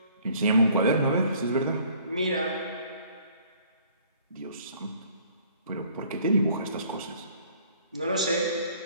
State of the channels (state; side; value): inverted; both; correlation -0.57